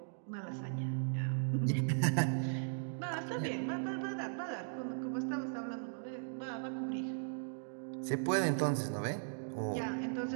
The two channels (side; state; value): left; silent; digital silence